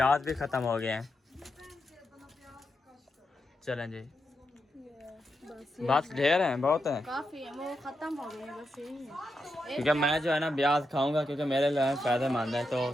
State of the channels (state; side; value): normal; both; correlation 0.85